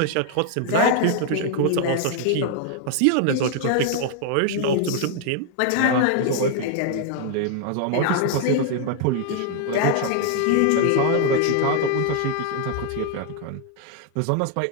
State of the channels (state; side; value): different; both; correlation 0.00